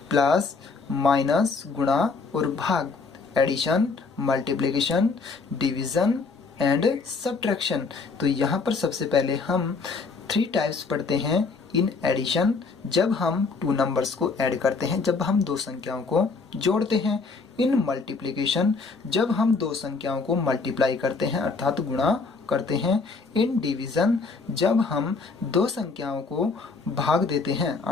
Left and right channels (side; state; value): right; quieter; 4.4 dB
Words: प्लस, माइनस, गुणा और भाग, addition, multiplication, division and subtraction. तो यहाँ पर सबसे पहले हम 3 टाइप्स पढ़ते हैं। इन एडिशन, जब हम 2 नंबर्स को ऐड करते हैं, जब हम 2 संख्याओं को जोड़ते हैं। इन मल्टीप्लिकेशन, जब हम 2 संख्याओं को मल्टीप्लाई करते हैं अर्थात गुणा करते हैं। इन डिवीजन, जब हम 2 संख्याओं को भाग देते हैं